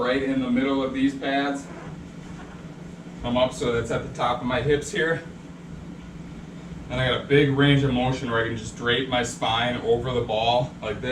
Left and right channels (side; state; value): both; identical; correlation 1.00